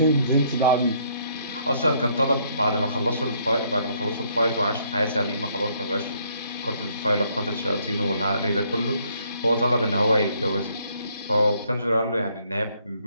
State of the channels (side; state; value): both; inverted; correlation -0.68